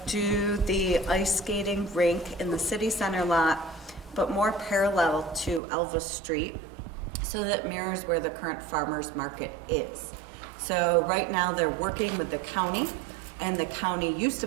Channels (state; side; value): drops out; left; at 5.6 s